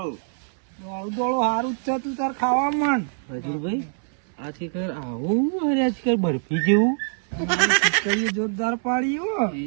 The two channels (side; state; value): left; silent; 62 dB below the other